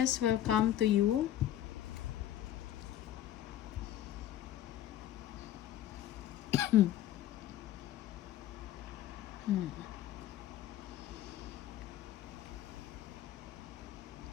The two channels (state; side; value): quieter; right; 12.1 dB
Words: will come to you.